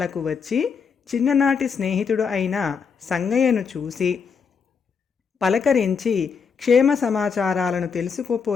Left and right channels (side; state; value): right; quieter; 6.0 dB